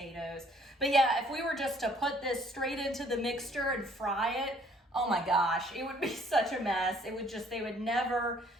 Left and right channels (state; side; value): normal; both; correlation 0.61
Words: But yeah, if we were just to put this straight into the mixture and fry it, oh my gosh, it would be such a mess. They would never